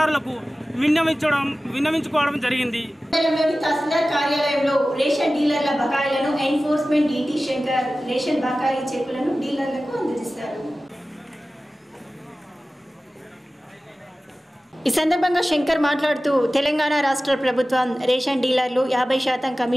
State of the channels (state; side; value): normal; both; correlation 0.96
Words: విన్నవించుకోవడం జరిగింది. తహసీల్దార్ కార్యాలయంలో రేషన్ డీలర్ల బకాయిలను ఎన్ఫోర్స్మెంట్ డిటి శంకర్ రేషన్ బకాయి చెక్కులను డీలర్లకు అందజేశారు. ఈ సందర్భంగా శంకర్ మాట్లాడుతూ, తెలంగాణ రాష్ట్ర ప్రభుత్వం రేషన్ డీలర్లు 50%